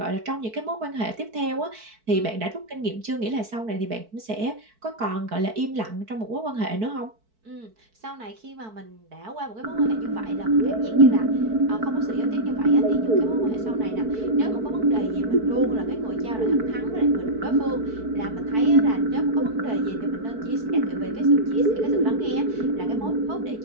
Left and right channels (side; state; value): left; late; 4.6 ms